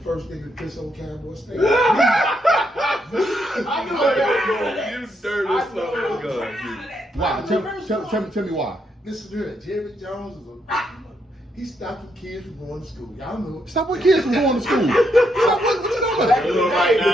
first nigga to piss on Cowboy State. I know that. You dirty son of a gun. Why? Tell me why. Listen to it. Jerry Jones is he stopped the kids from going to school. Y'all know it. Stop what kids from going to school. What you talking about? Little right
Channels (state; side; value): normal; both; correlation 0.78